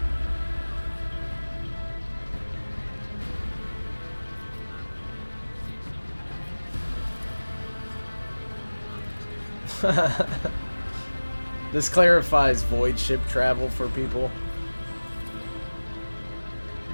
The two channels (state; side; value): inverted; both; correlation -1.00